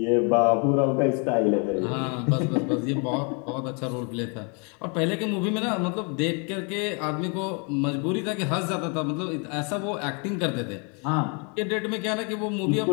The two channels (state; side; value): quieter; right; 35.8 dB